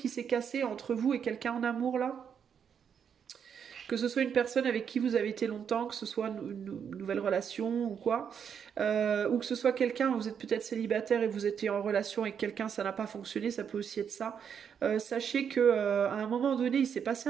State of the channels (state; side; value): quieter; left; 7.6 dB